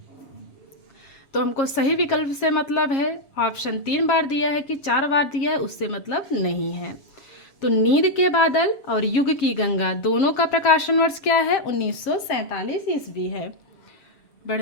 तो हमको सही विकल्प से मतलब है, ऑप्शन 3 बार दिया है कि 4 बार दिया है, उससे मतलब नहीं है। तो नींद के बादल और युग की गंगा दोनों का प्रकाशन वर्ष क्या है? 1947 ईस्वी है।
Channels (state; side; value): late; right; 7.4 ms